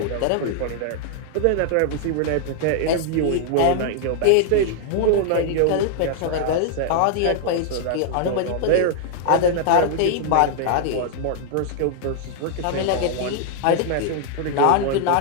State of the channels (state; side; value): different; both; correlation 0.00